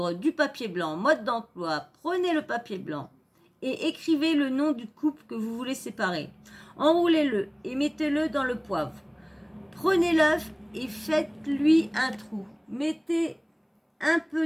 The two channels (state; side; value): identical; both; correlation 1.00